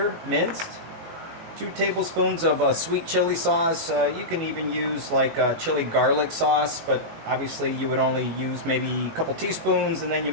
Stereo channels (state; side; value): late; left; 19 ms